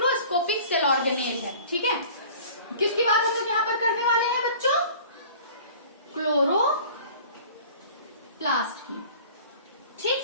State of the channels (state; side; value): inverted; both; correlation -0.45